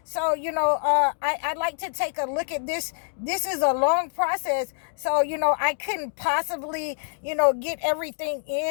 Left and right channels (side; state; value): right; silent; digital silence